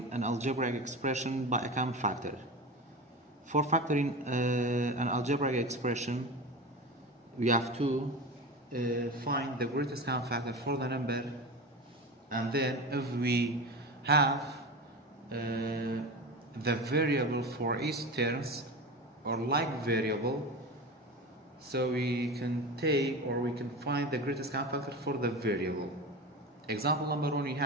an algebraic expression by a common factor. For factoring an algebraic expression, we have to find the greatest common factor for the number, and then if we have the variable for each terms or like variable, so we can take or we can find the greatest common factor for the variable. Example number 1, we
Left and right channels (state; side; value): normal; both; correlation 0.27